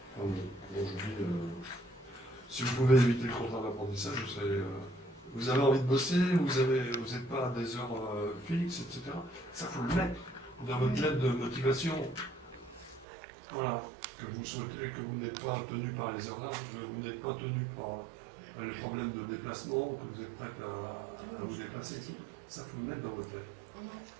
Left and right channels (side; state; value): left; drops out; at 13.1 s